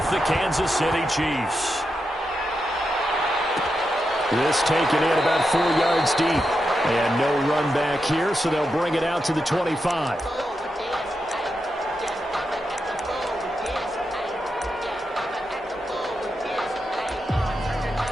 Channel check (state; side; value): normal; both; correlation 0.87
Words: the Kansas City Chiefs. This taken in about 4 yards deep. And no run back here, so they'll bring it out to the 25.